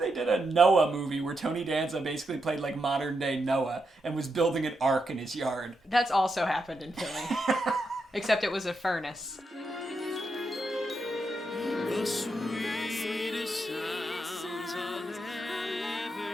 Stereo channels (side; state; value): both; normal; correlation 0.84